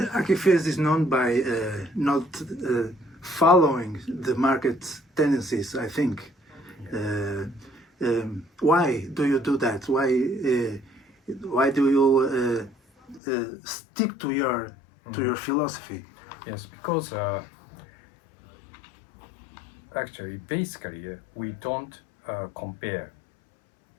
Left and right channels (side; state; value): right; drops out; at 13.2 s